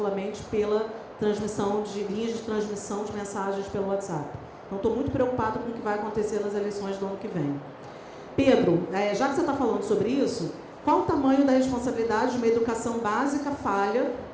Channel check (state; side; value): identical; both; correlation 1.00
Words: pela transmissão de linhas de transmissão de mensagens pelo WhatsApp. Então, estou muito preocupado com o que vai acontecer nas eleições do ano que vem. Pedro, já que você está falando sobre isso, Qual o tamanho da responsabilidade de uma educação básica falha